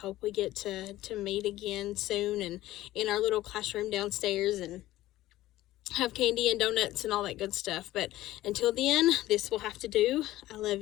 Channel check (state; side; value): quieter; right; 15.7 dB